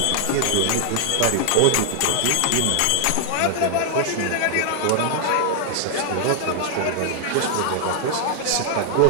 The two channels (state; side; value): different; both; correlation 0.00